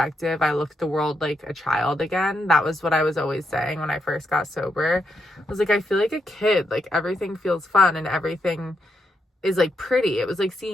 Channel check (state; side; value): normal; both; correlation 0.81